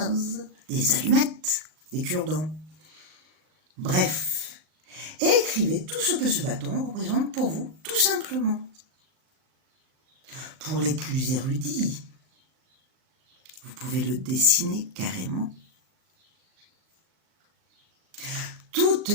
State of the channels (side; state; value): left; late; 38 ms